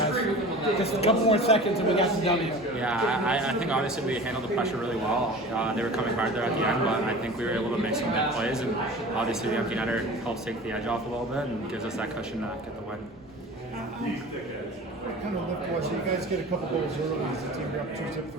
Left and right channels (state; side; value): normal; both; correlation 0.38